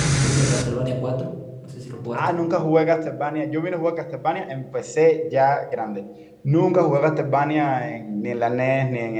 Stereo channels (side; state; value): both; identical; correlation 1.00